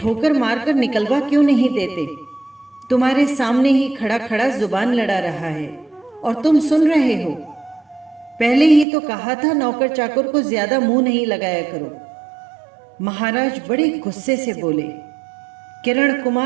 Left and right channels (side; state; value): left; drops out; at 8.8 s